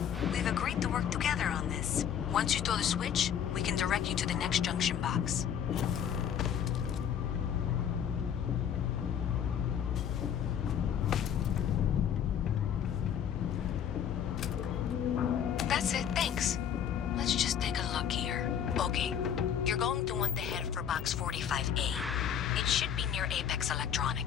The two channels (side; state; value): right; quieter; 8.8 dB